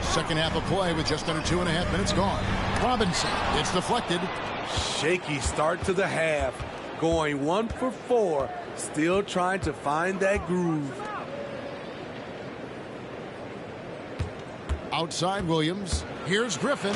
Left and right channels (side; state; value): both; identical; correlation 1.00